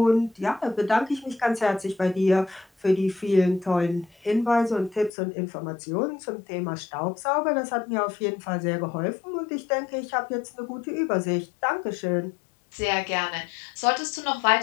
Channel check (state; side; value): drops out; right; at 5.1 s